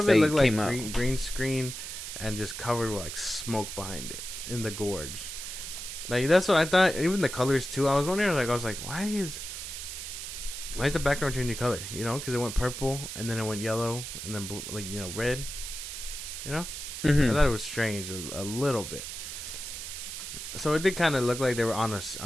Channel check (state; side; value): noise; right; hiss, 7 dB below the sound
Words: it looked like green screen, and just covered with like smoke behind it in the gorge. Like that's what I thought. Even the colors too. I was wondering. Like I was like, why is the background changing color? You know, because it went purple and then it went yellow and then blue, like red. You know, I thought it was strange a little bit. So it did kind of look like they were on